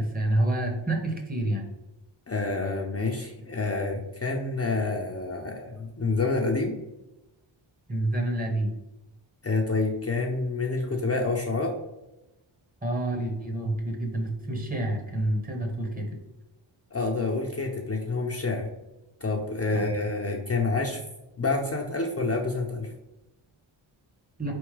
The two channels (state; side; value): normal; both; correlation 0.40